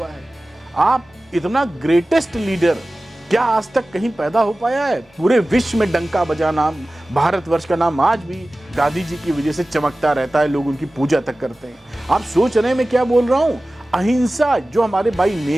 है। आप इतना ग्रेटेस्ट लीडर क्या आज तक कहीं पैदा हो पाया है? पूरे विश्व में डंका बजा नाम, भारतवर्ष का नाम आज भी गांधी जी की वजह से चमकता रहता है, लोग उनकी पूजा तक करते हैं। आप सोच रहे हैं मैं क्या बोल रहा हूं? अहिंसा जो हमारे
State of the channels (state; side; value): normal; both; correlation 0.97